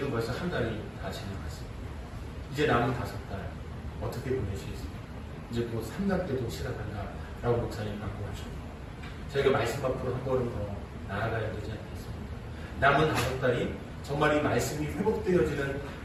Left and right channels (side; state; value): both; identical; correlation 1.00